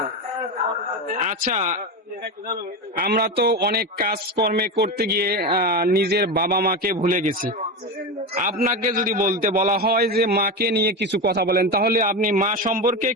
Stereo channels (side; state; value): both; normal; correlation 0.19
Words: আচ্ছা, আমরা তো অনেক কাজকর্মে করতে গিয়ে নিজের বাবা মাকে ভুলে গেছি। আপনাকে যদি বলতে বলা হয় যে মাকে নিয়ে কিছু কথা বলেন, তাহলে আপনি মা সম্পর্কে